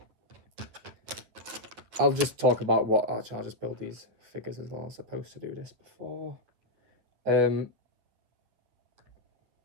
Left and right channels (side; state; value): left; late; 9.3 ms